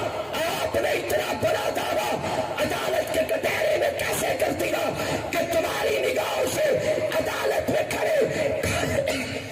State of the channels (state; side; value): identical; both; correlation 1.00